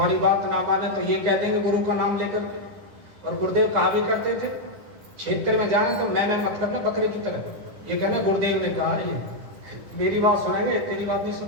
बात ना माने तो ये कह देंगे गुरु का नाम लेकर के। और गुरुदेव कहा भी करते थे, क्षेत्र में जाए तो मैं मत करना बकरे की तरह। ये कहना गुरुदेव ने कहा, ये मेरी बात सुनेंगे तेरी बात नहीं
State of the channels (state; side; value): late; left; 10 ms